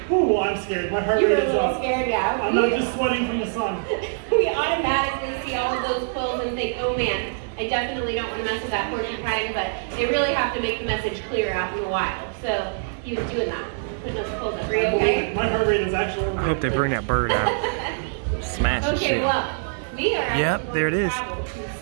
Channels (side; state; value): left; silent; 63 dB below the other